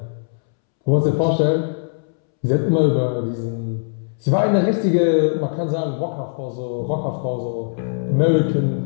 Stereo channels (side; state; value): right; silent; 65 dB below the other